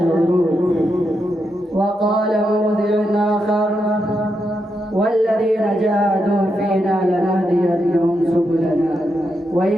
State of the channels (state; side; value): normal; both; correlation 0.83